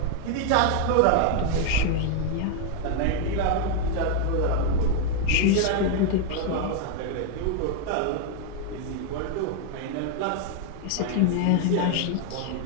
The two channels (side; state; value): both; different; correlation 0.00